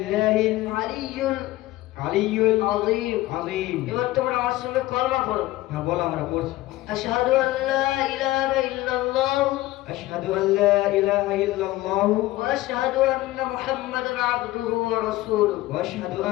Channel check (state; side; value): quieter; right; 17.3 dB